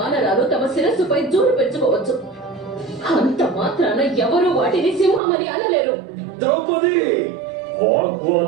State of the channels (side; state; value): left; drops out; at 5.2 s